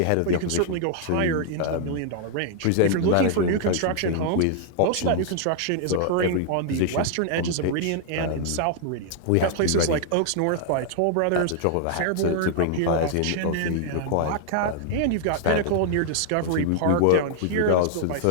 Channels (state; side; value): different; both; correlation 0.00